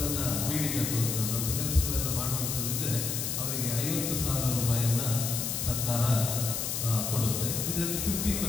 ಬೀಡಿ ಕಟ್ಟುವಂಥದ್ದು ಅಂತ ಕೆಲಸಗಳೆಲ್ಲ ಮಾಡುವಂಥದ್ದಿದ್ದರೆ ಅವರಿಗೆ 50,000 ರೂಪಾಯಿಯನ್ನು ಸರ್ಕಾರ ಕೊಡುತ್ತೆ. ಇದರಲ್ಲಿ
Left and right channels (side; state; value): left; noise; hiss, 2 dB below the sound